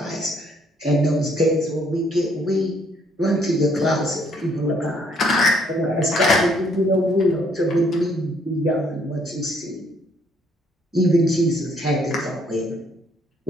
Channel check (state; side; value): normal; both; correlation 0.66